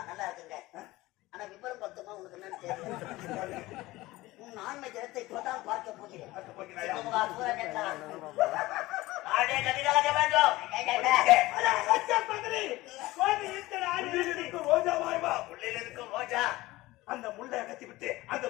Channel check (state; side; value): quieter; right; 18.8 dB